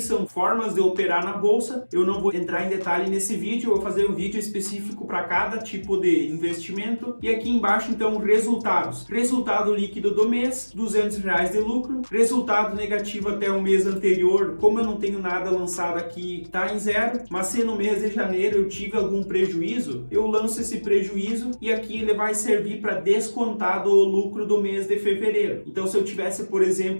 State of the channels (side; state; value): both; inverted; correlation -1.00